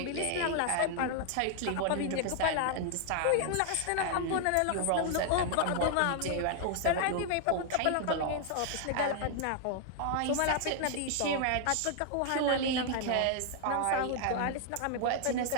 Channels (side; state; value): both; different; correlation 0.00